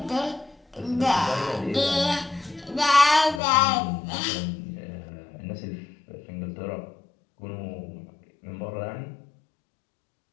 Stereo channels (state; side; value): drops out; right; at 3.4 s